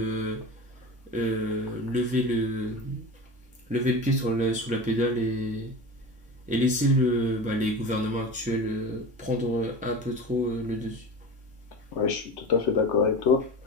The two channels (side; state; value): both; normal; correlation 0.30